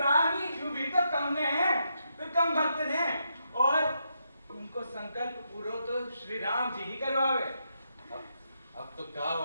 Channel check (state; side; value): inverted; both; correlation -0.81